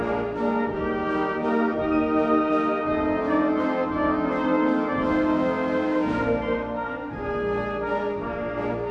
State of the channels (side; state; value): both; identical; correlation 1.00